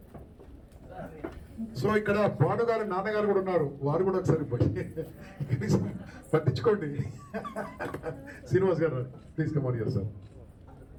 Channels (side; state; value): both; identical; correlation 1.00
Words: So ఇక్కడ భానుగారు నాన్నగారు కూడా ఉన్నారు, వారు కూడా ఒకసారి పట్టించుకోండి. శ్రీనివాస్ గారు please come on here sir.